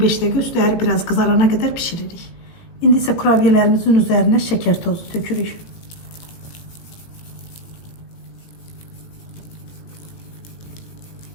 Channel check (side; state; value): right; late; 18 ms